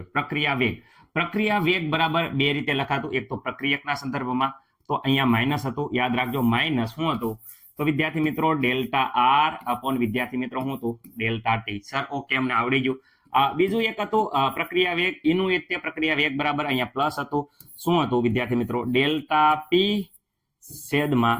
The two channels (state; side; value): identical; both; correlation 1.00